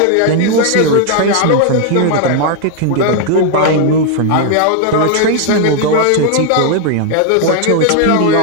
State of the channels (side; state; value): both; different; correlation 0.00